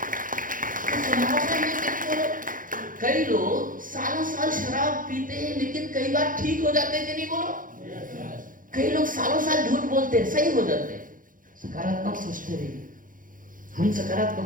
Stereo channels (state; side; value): late; left; 0.39 ms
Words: तो संभावना है कि नहीं? बोलो, कई लोग सालों साल शराब पीते हैं लेकिन कई बार ठीक हो जाते हैं कि नहीं? बोलो, कई लोग सालों साल झूठ बोलते हैं, सही हो जाते हैं। सकारात्मक सोचते रहिए, हम